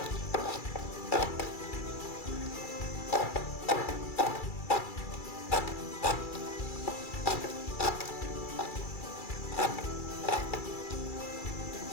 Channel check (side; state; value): right; late; 2.3 ms